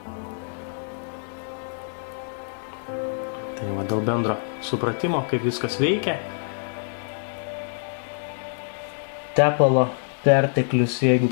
Tai va, dėl bendro supratimo, kaip viskas veikia. Tepalo perteklius, jeigu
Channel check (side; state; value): right; silent; digital silence